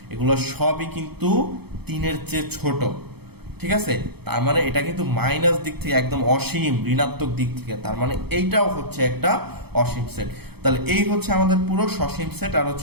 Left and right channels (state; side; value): late; left; 0.97 ms